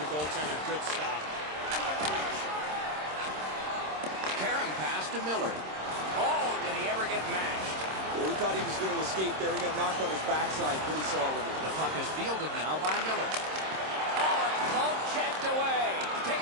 the goaltender. Good stop. Karam pass to Miller. Oh, did he ever get mashed? Well, we thought he was going to escape there. He got knocked on his backside pretty solidly. The puck is fielded now by Miller. Oh, it's pump checked away.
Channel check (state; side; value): late; left; 26 ms